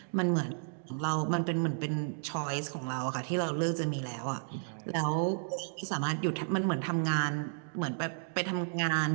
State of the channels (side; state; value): left; silent; digital silence